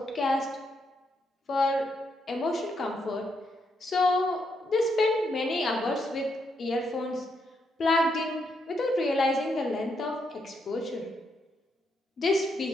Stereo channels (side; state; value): both; normal; correlation 0.78